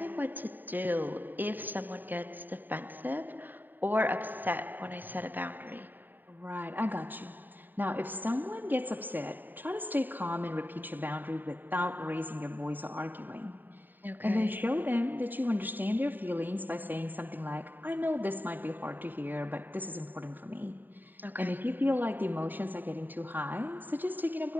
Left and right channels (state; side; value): late; left; 0.090 ms